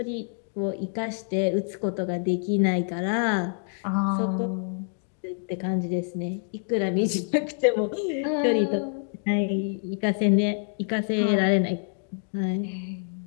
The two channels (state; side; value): silent; right; 60 dB below the other